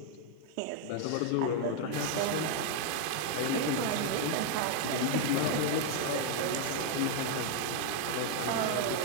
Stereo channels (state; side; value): different; both; correlation 0.01